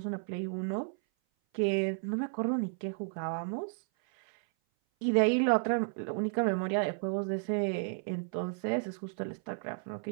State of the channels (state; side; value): silent; left; 56 dB below the other